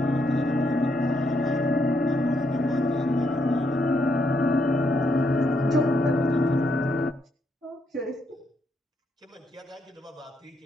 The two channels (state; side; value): normal; both; correlation 0.77